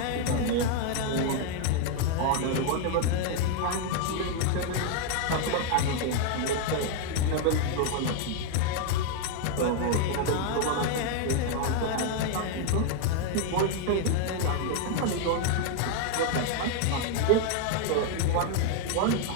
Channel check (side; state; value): both; different; correlation 0.00